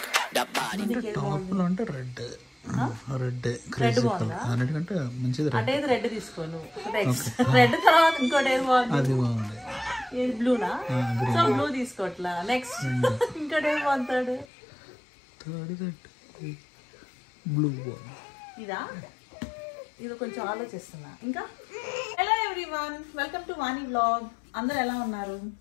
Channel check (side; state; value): right; drops out; at 14.5 s